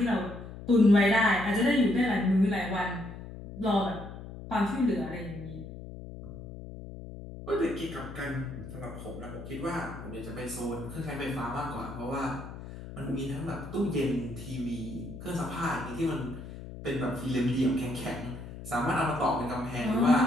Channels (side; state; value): left; noise; hum, 12 dB below the sound